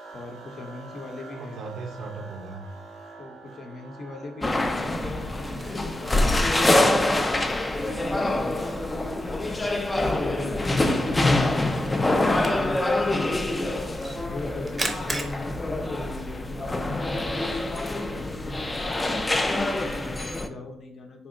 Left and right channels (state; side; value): normal; both; correlation 0.91